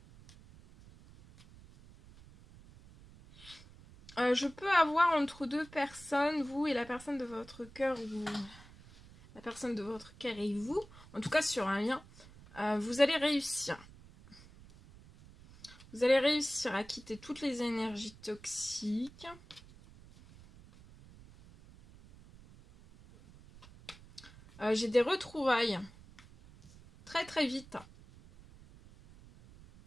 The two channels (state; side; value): noise; right; rumble, 21 dB below the sound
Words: Je peux avoir entre deux personnes, vous et la personne de votre cœur, ou la personne de votre cœur et vous, en tout cas sur un lien, vous allez réussir. Vous allez réussir à quitter toutes les énergies toxiques. J'ai des retrouvailles très très vite.